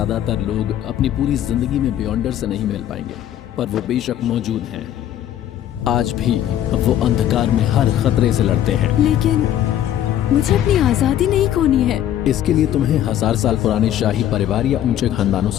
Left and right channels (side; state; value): right; quieter; 11.5 dB